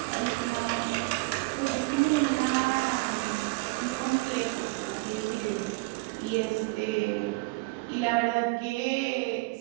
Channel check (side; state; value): left; quieter; 25.4 dB